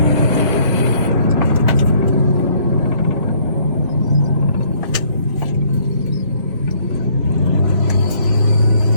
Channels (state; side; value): inverted; both; correlation -0.62